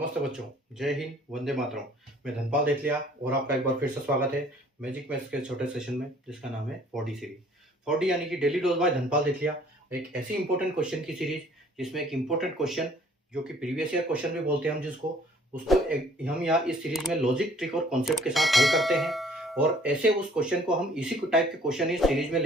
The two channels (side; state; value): both; normal; correlation 0.57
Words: नमस्ते बच्चों, जय हिंद, वंदे मातरम। मैं धनपाल देथलिया और आपका एक बार फिर से स्वागत है मैजिक मैथ्स के छोटे सेशन में, जिसका नाम है 4D सीरीज। 4D यानी कि डेली डोज बाय धनपाल देथलिया, एक ऐसी इंपॉर्टेंट क्वेश्चन की सीरीज जिसमें एक इंपॉर्टेंट क्वेश्चन जो कि प्रीवियस ईयर क्वेश्चन भी बोलते हैं हम जिसको, उसको हम यहाँ इस सीरीज में लॉजिक, ट्रिक और कॉन्सेप्ट के साथ हल करते हैं। और ऐसे उस क्वेश्चन को हम इसी टाइप के क्वेश्चन इस सीरीज में